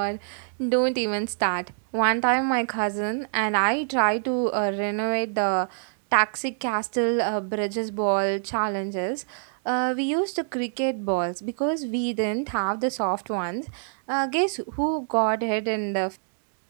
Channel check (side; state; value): left; silent; digital silence